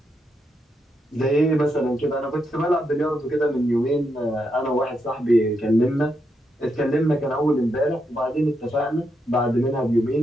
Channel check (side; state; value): both; normal; correlation 0.82